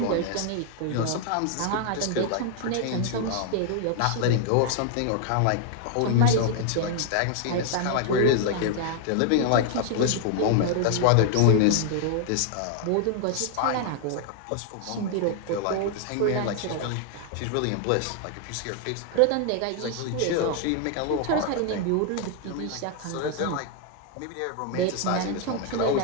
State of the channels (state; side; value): different; both; correlation 0.00